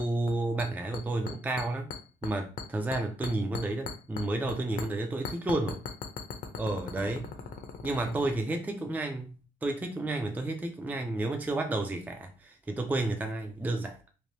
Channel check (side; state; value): both; normal; correlation 0.81